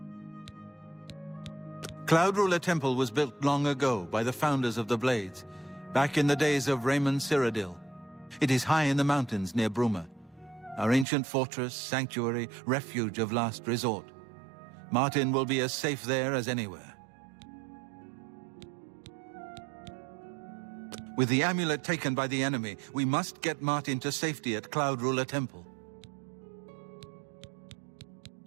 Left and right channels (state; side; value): drops out; left; at 11.1 s